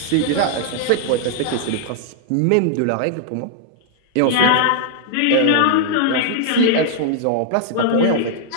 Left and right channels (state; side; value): different; both; correlation 0.00